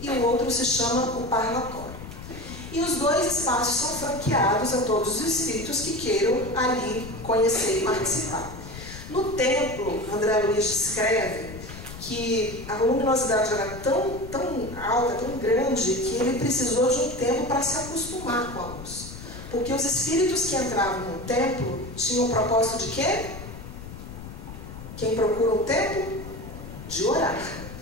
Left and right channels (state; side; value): noise; left; rumble, 12 dB below the sound